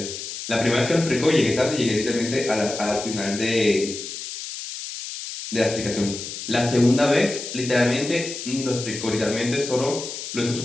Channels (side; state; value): left; noise; hiss, 8 dB below the sound